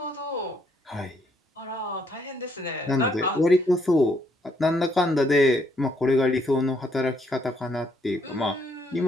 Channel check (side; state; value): both; normal; correlation 0.71